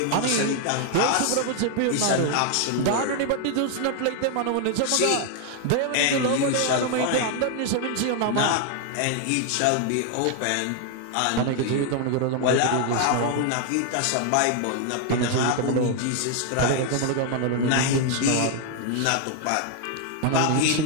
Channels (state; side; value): different; both; correlation 0.00